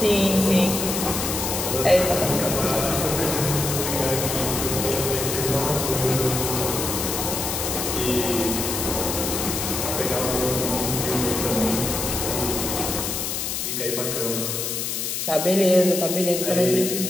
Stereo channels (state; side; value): noise; left; hiss, 2 dB below the sound